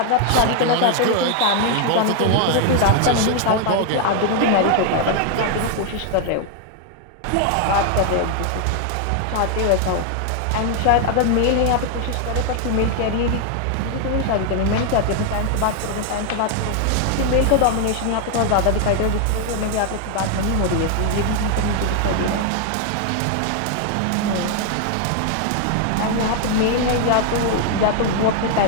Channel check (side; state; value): both; different; correlation 0.00